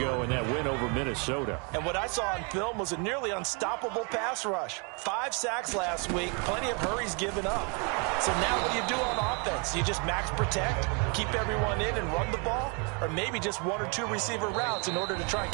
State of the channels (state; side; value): quieter; left; 34.6 dB